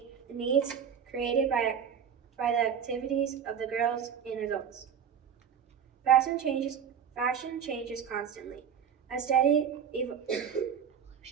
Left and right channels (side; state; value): left; quieter; 7.8 dB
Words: the needs created by the activities of the girls and adults. Fashion changes constantly. A steady